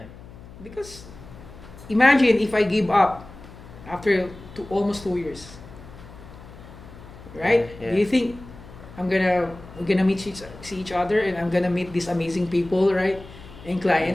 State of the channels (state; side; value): noise; left; hum, 18 dB below the sound